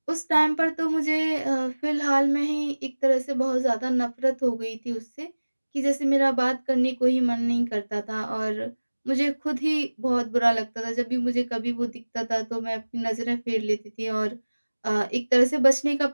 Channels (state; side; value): inverted; both; correlation -1.00